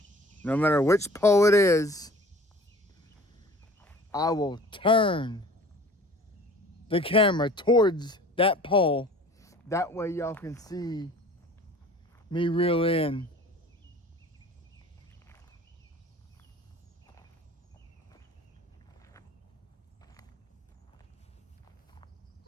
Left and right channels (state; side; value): normal; both; correlation 0.47